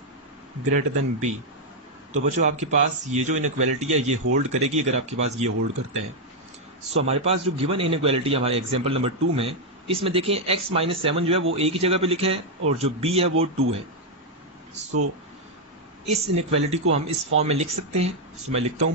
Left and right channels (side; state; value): both; normal; correlation 0.00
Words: greater then b। तो बच्चों आपके पास ये जो इनइक्वालिटी है ये होल्ड करेगी अगर आपके पास ये होल्ड करते हैं। सो हमारे पास जो गिवन इनइक्वालिटी है हमारे एग्जांपल नंबर 2 में, इसमें देखें x -7 जो है वो a की जगह पे लिखा है और जो b है वो 2 है। सो इस इनइक्वालिटी को हम इस फॉर्म में लिख सकते हैं। सो मैं लिखता हूं